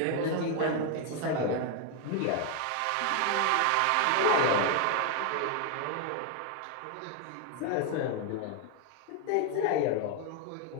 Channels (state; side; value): different; both; correlation 0.00